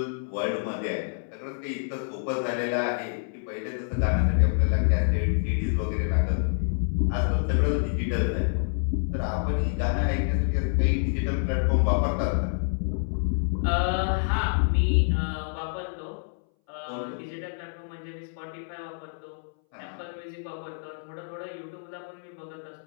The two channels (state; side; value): silent; right; 60 dB below the other